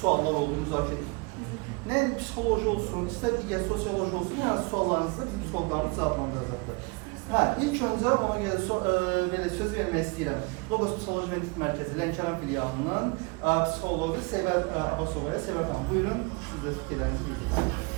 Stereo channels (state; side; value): quieter; left; 29.3 dB